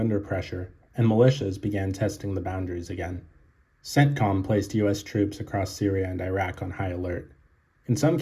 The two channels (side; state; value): both; identical; correlation 1.00